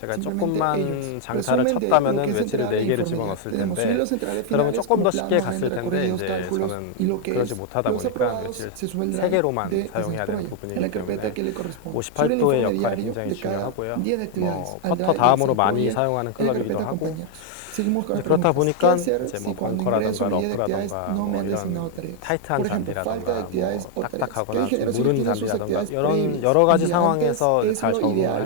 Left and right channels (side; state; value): both; different; correlation 0.00